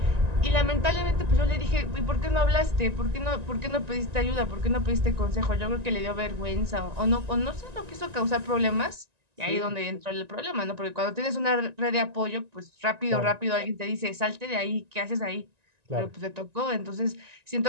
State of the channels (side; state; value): left; late; 1.9 ms